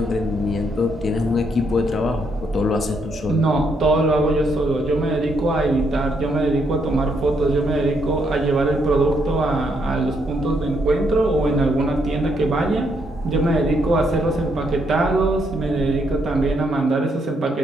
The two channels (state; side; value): normal; both; correlation 0.75